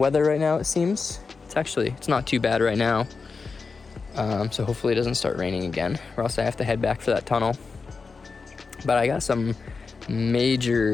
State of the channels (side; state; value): right; quieter; 4.7 dB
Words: right now, it seems. It's not too bad right now. So hopefully it doesn't start raining again, or else I have to head back for that tunnel. But I got some